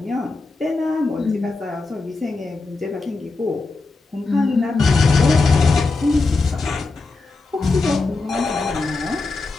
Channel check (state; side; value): quieter; right; 3.7 dB